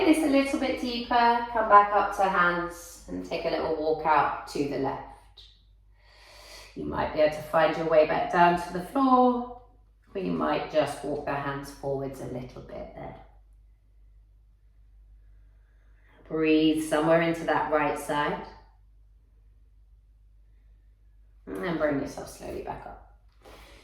this a little bit deeper, come back up to hands and take a little walk out to the left. You might be able to find your way back down to the floor, or you might just walk the hands forwards a little bit there. Breathe somewhere into that right side. And then bring yourself slowly back up.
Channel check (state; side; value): identical; both; correlation 1.00